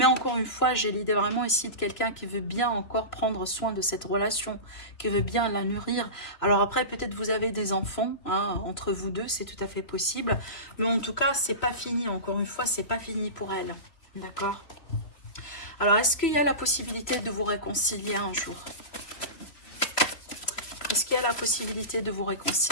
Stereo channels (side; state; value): right; late; 3.4 ms